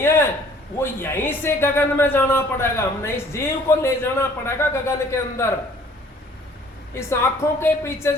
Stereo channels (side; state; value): both; normal; correlation 0.56